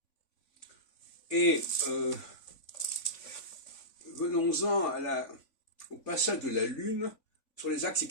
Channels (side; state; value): right; late; 3.5 ms